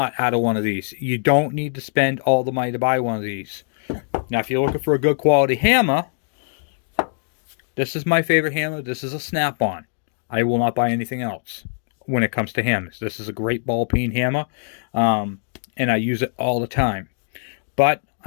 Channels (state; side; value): silent; right; digital silence